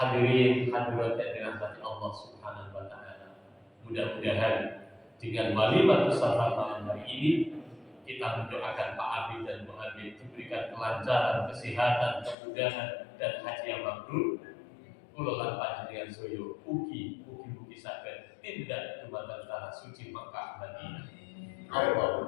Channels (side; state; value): right; drops out; at 12.4 s